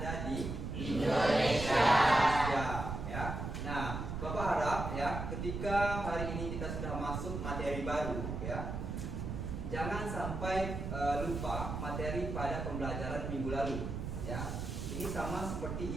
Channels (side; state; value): right; noise; rumble, 4 dB below the sound